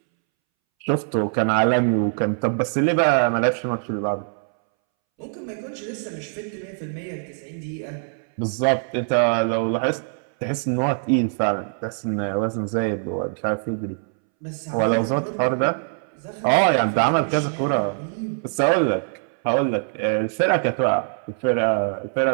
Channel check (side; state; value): left; silent; 63 dB below the other